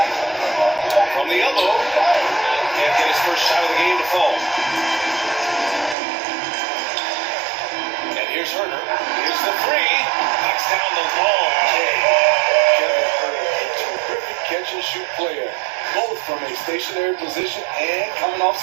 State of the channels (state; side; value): drops out; left; at 6.0 s